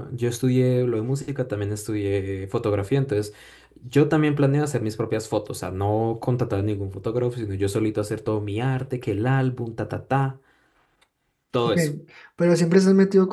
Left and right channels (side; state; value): both; identical; correlation 1.00